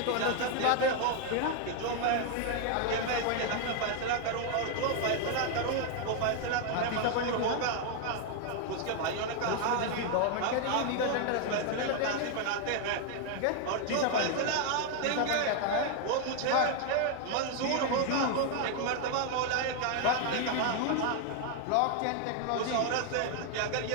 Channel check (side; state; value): both; different; correlation 0.00